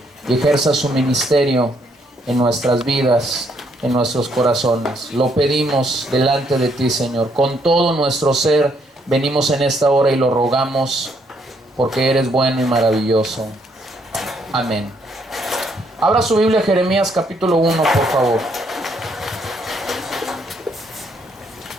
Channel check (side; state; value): both; normal; correlation 0.71